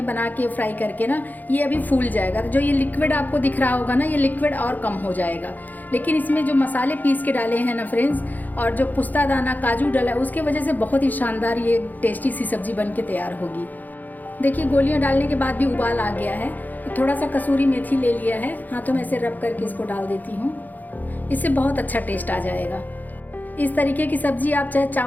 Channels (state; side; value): late; right; 0.083 ms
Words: बना के फ्राई करके ना, ये अभी फूल जाएगा। तो जो ये लिक्विड आपको दिख रहा होगा ना, ये लिक्विड और कम हो जाएगा। लेकिन इसमें जो मसाले पीस के डाले हैं ना फ्रेंड्स, और जो पुस्ता दाना काजू डाला है, उसके वजह से बहुत ही शानदार ये टेस्टी सी सब्जी बन के तैयार होगी। देखिए, गोलियां डालने के बाद भी उबाल आ गया है। थोड़ा सा कसूरी मेथी ले लिया है, हाथों में से रब करके इसको डाल देती हूँ। इससे बहुत अच्छा टेस्ट आ जाएगा। इस तरीके की सब्ज़ी आप चाहे